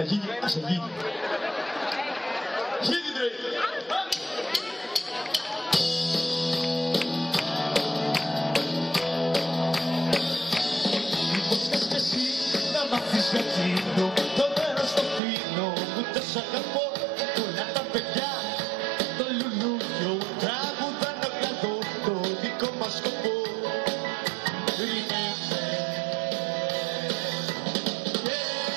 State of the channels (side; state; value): left; drops out; at 15.2 s